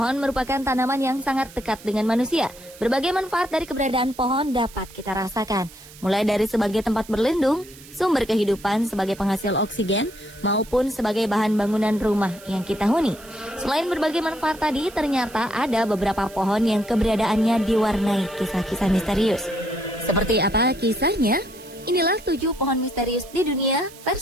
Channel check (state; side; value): noise; right; hiss, 20 dB below the sound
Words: merupakan tanaman yang sangat dekat dengan manusia. Berbagai manfaat dari keberadaan pohon dapat kita rasakan, mulai dari sebagai tempat berlindung, sumber kehidupan sebagai penghasil oksigen, maupun sebagai bahan bangunan rumah yang kita huni. Selain berbagai manfaat tadi, ternyata ada beberapa pohon yang keberadaannya diwarnai kisah-kisah misterius. Seperti apa kisahnya? Inilah 7 pohon misterius di dunia